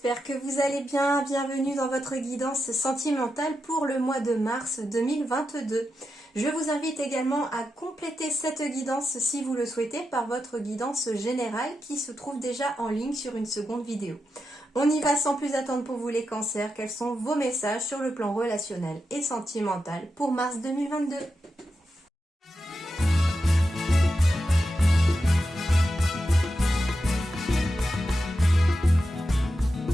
que vous allez bien. Bienvenue dans votre guidance sentimentale pour le mois de mars 2022. Je vous invite également à compléter cette guidance si vous le souhaitez par votre guidance générale qui se trouve déjà en ligne sur une seconde vidéo. On y va sans plus attendre pour vous les cancers. Quels sont vos messages sur le plan relationnel et sentimental pour mars 2022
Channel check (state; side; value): normal; both; correlation 0.88